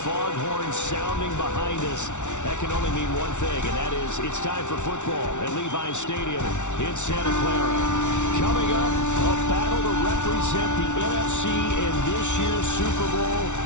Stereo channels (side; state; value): right; late; 0.84 ms